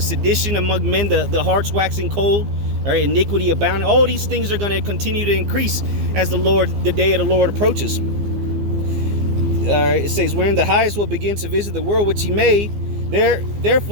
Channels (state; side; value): late; left; 15 ms